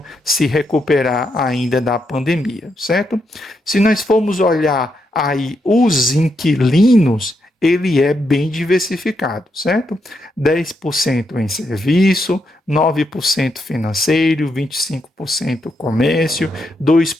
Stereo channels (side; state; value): both; normal; correlation 0.81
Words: se recuperar ainda da pandemia, certo? Se nós formos olhar aí os inquilinos, ele é bem diversificado, certo? 10% em serviço, 9% financeiro, 25% comércio,